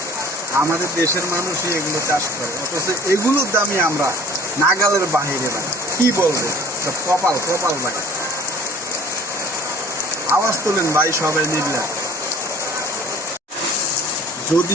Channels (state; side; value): normal; both; correlation 0.48